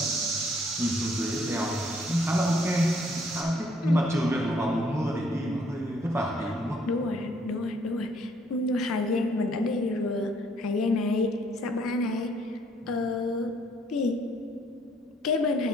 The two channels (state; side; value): normal; both; correlation 0.65